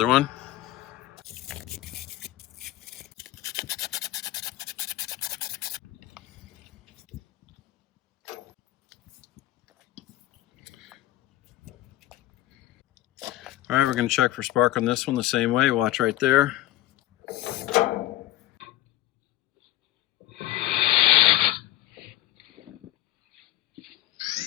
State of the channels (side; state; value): right; quieter; 15.2 dB